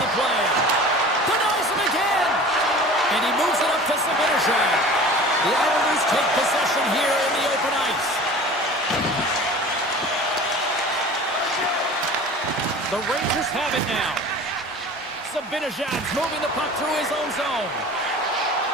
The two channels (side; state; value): both; normal; correlation 0.40